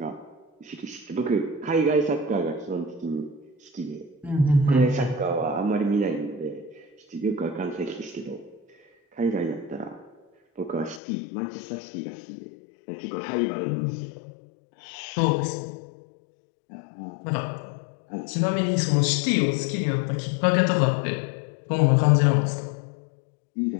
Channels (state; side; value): drops out; right; at 11.0 s